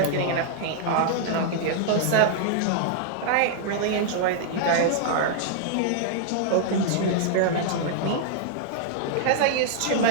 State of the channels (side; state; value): both; different; correlation -0.01